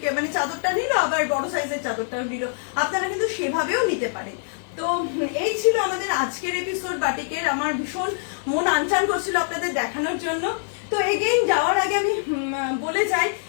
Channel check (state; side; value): silent; right; digital silence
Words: মানে চাদরটা নিল, আবার বড় সাইজের চাদরটাও নিল, আপনারা কিন্তু সেভাবেও নিতে পারেন। তো এই ছিল আমাদের আজকের এপিসোড বাটিকের। আমার ভীষণ মন আনচান করছিল আপনাদের দেখানোর জন্য। তো এগেইন যাওয়ার আগে আমি বলে যাই